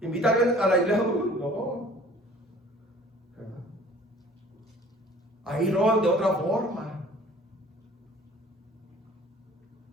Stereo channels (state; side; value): normal; both; correlation 0.50